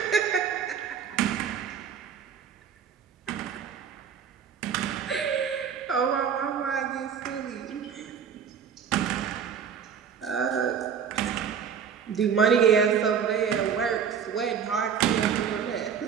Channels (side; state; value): left; quieter; 7.4 dB